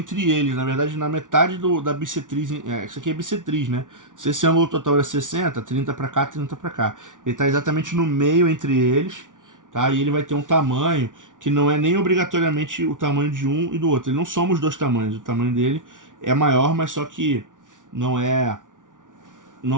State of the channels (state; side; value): late; left; 0.87 ms